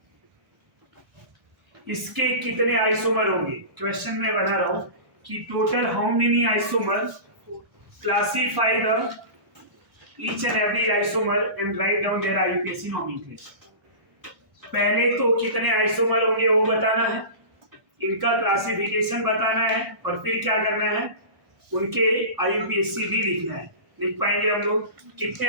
इसके कितने आइसोमर होंगे? क्वेश्चन में बना रहा हूं कि total how many isomer, classify the each and every isomer and write down their IUPAC nomenclature. पहले तो कितने आइसोमर होंगे वो बताना है, इनका क्लासिफिकेशन बताना है, और फिर क्या करना है? उनके आईयूपीएसी भी लिखना है। लिख पाएंगे हम लोग? कितने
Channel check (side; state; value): left; late; 1.2 ms